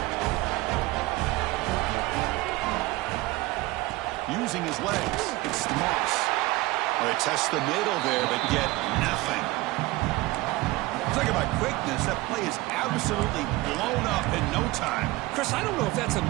Using his legs, it's Moss. Well, they test the middle there, but get nothing. Talk about quickness. That play is absolutely blown up in no time. Chris, I don't know if that's a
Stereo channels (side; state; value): left; quieter; 20.0 dB